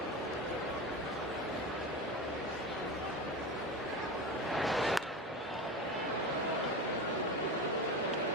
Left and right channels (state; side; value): normal; both; correlation 0.25